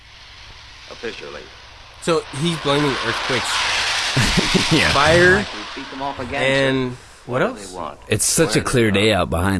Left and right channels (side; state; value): both; identical; correlation 1.00